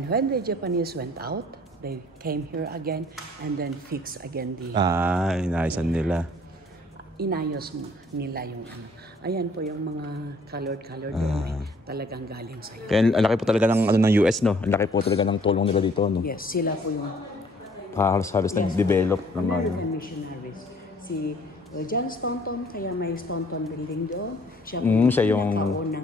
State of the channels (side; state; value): both; normal; correlation 0.59